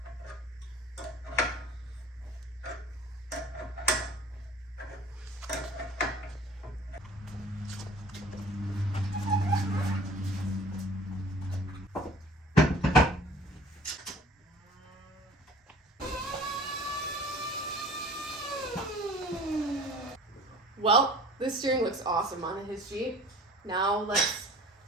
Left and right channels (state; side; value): normal; both; correlation 0.47